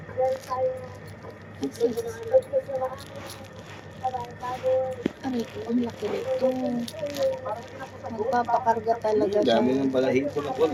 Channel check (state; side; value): identical; both; correlation 1.00